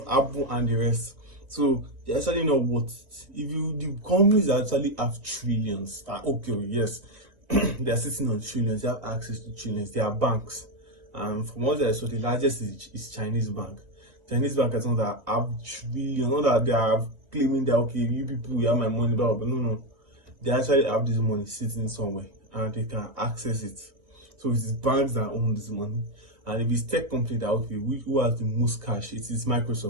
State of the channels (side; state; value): left; late; 2.1 ms